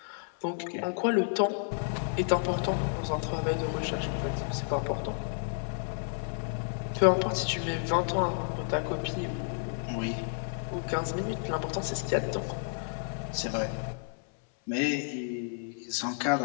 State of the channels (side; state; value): right; silent; 57 dB below the other